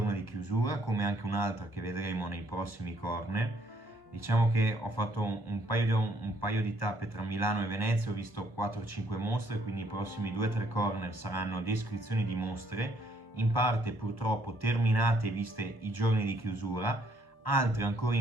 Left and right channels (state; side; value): late; right; 1.0 ms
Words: di chiusura, come anche un'altra che vedremo nei prossimi corner. Diciamo che ho fatto un paio di tappe tra Milano e Venezia, ho visto 4-5 mostre, quindi i prossimi 2-3 corner saranno descrizioni di mostre, in parte purtroppo terminate e viste i giorni di chiusura, altre ancora